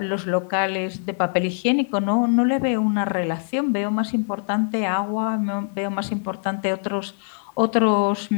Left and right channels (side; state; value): right; silent; 63 dB below the other